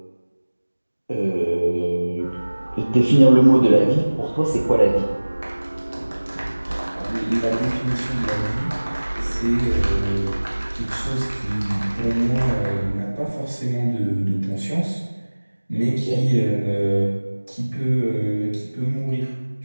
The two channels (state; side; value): inverted; both; correlation -1.00